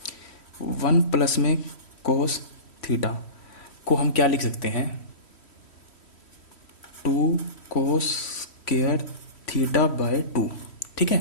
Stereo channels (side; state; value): right; late; 3.1 ms